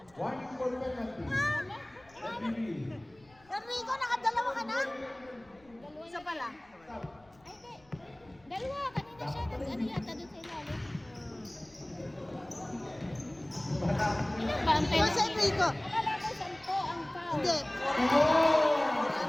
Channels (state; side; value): noise; left; rumble, 29 dB below the sound